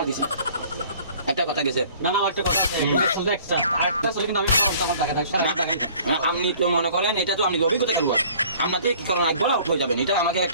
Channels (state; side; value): inverted; both; correlation -0.52